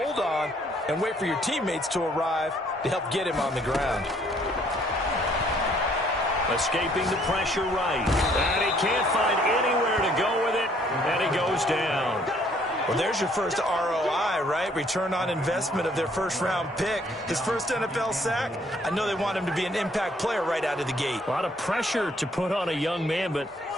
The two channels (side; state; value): both; normal; correlation 0.64